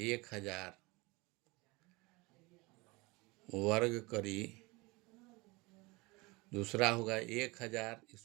वर्ग करी, दूसरा होगा 1000,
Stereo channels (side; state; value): left; quieter; 24.8 dB